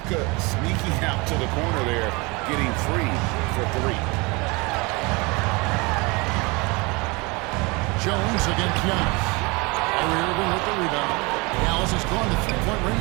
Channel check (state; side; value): quieter; left; 26.6 dB